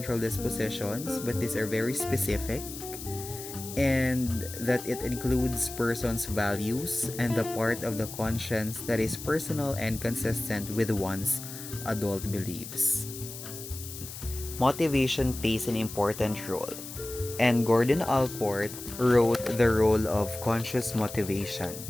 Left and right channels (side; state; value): left; noise; hiss, 11 dB below the sound